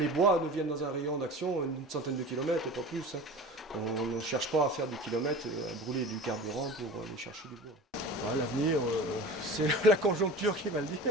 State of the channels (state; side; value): normal; both; correlation 0.37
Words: bois nous viennent dans un rayon d'action, une centaine de kilomètres, pas plus. Hein. On ne cherche pas à faire des kilomètres, à brûler du carburant pour aller chercher du bois. Ouais, l'avenir, c'est la conjoncture qui va le dire,